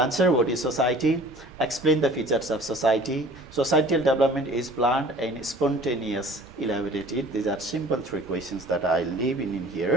what is society, explain the features of society. Societal development is planned and spontaneous, elaborated. These are simple 3 questions that I leave in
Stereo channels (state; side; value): normal; both; correlation 0.48